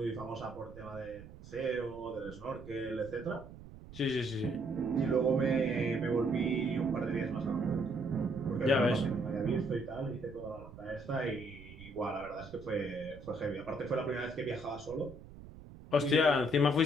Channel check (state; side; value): noise; right; rumble, 16 dB below the sound